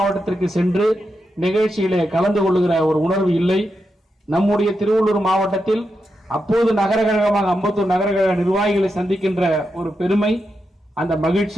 சென்று நிகழ்ச்சியிலே கலந்து கொள்ளுகிற ஒரு உணர்வு இல்லை. நம்முடைய திருவள்ளூர் மாவட்டத்தில் அப்போது நகர கழகமாக அம்பத்தூர் நகர கழக நிர்வாகிகளை சந்திக்கின்ற ஒரு பெருமை, அந்த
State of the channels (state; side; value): normal; both; correlation 0.86